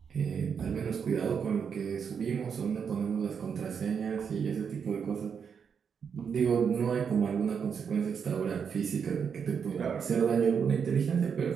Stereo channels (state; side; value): quieter; left; 6.8 dB